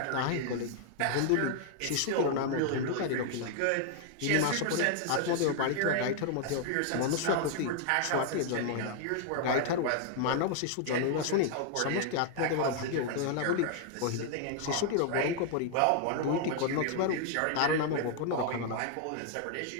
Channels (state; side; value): different; both; correlation 0.00